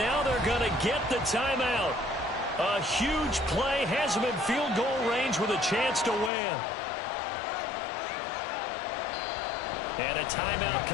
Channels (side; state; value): right; drops out; at 6.3 s